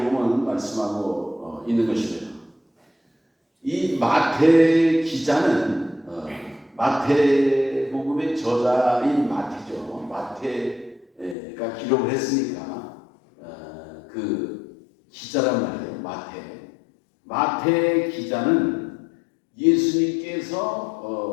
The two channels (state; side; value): drops out; right; at 11.4 s